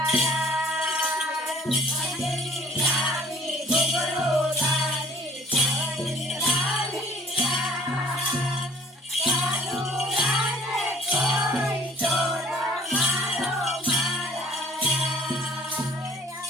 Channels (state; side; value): normal; both; correlation 0.54